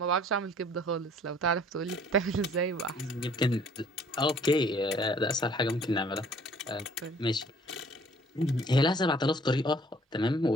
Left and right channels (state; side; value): normal; both; correlation 0.56